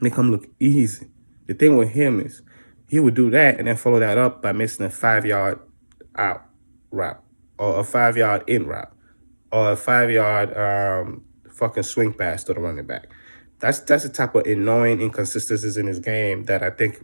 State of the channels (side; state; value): both; inverted; correlation -1.00